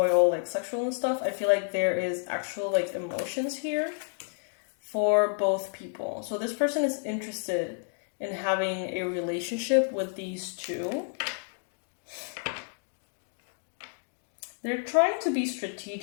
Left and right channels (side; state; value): right; silent; 58 dB below the other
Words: all like sexual and stuff. I feel like there is actual like emotions here for both people. So this person is interested in having a relationship with these 2. They're trying to be